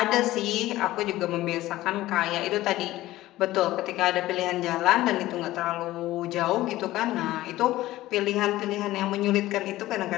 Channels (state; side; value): quieter; right; 16.3 dB